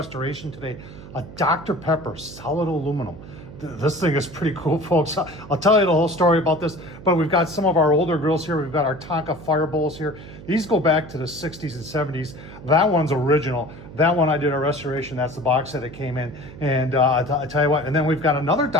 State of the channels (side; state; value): right; noise; hum, 16 dB below the sound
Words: today. A Dr. Pepper solid aluminum. This thing is pretty cool, folks. I'll tell you the whole story about this, but we've got some of our older grills here. We've got our Tonka fire bowls here. These go back to the 60s and 70s. That one's original. That one I did a restoration. That's the box that it came in. And I tell you what, and then we've got another